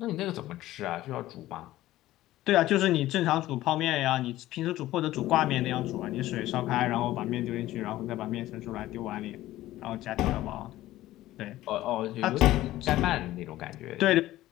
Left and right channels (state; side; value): quieter; right; 15.5 dB